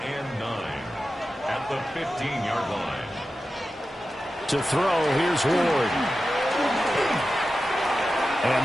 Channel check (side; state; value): both; normal; correlation 0.92